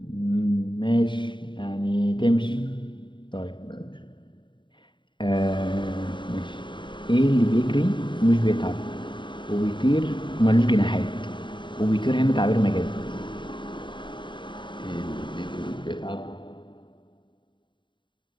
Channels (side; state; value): right; late; 0.23 ms